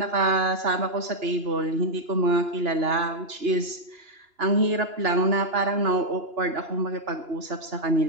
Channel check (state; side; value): late; left; 2.9 ms